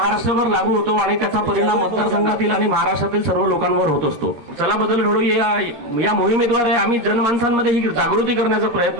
लागू होतो आणि त्याचा परिणाम मतदारसंघातील आणि महाराष्ट्रातील सर्व लोकांवर होत असतो। चला बदल घडवूया या मोहिमेद्वारे आम्ही जनमानसांमध्ये ही जागृती करण्याचा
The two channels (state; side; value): late; left; 13 ms